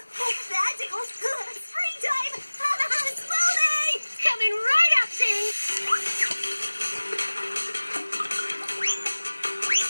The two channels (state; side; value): inverted; both; correlation -1.00